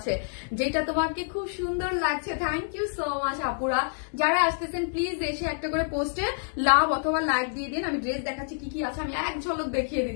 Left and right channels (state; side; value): silent; right; digital silence